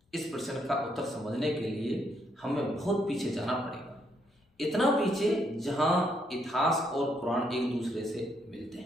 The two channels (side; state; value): both; normal; correlation 0.74